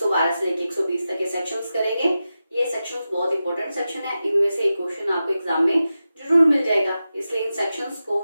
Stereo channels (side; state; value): both; inverted; correlation -0.92